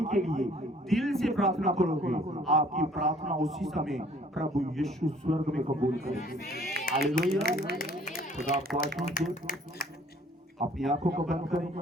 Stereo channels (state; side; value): normal; both; correlation 0.57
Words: के लिए दिल से प्रार्थना करोगे, आपकी प्रार्थना उसी समय प्रभु यीशु स्वर्ग में कबूल करेंगे। हालेलुया। खुदा आपको आशीष दे। अपनी आंखों को बंद करें